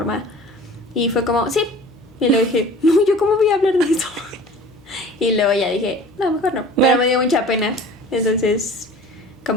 Y fue como, sí. Y luego dije, no, ¿yo cómo voy a hablar de eso? Y luego ya dije, no, mejor no. Pero No. me dio mucha pena. Entonces,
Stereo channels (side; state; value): left; noise; hum, 30 dB below the sound